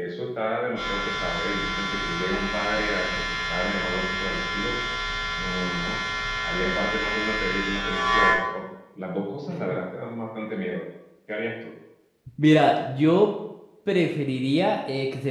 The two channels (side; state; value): both; identical; correlation 1.00